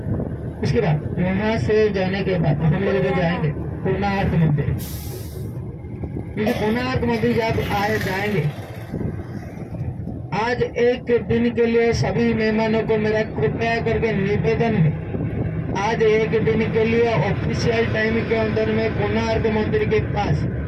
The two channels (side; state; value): both; identical; correlation 1.00